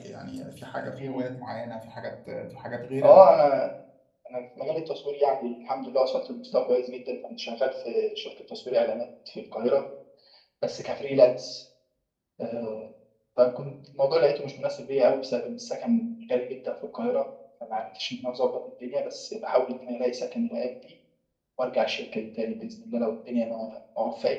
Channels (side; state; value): both; identical; correlation 1.00